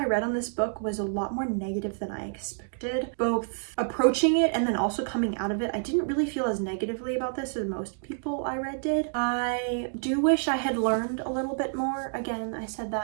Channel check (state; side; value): silent; left; digital silence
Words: read on this book was a lot more negative than I expected. Both approaching it and then also coming out of it. I didn't really feel as negatively about this as most people I read did. I do wish I had learned a little bit more. Again, I said